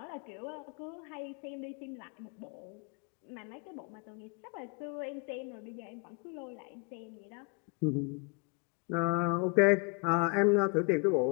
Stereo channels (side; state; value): right; quieter; 34.5 dB